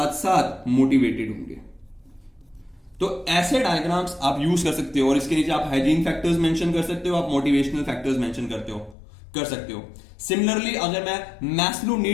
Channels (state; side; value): drops out; right; at 9.0 s